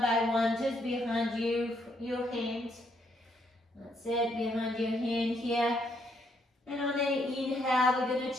by one, just behind your hand. That's it, behind your hand here. And on the inhale, we're going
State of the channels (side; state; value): both; normal; correlation 0.73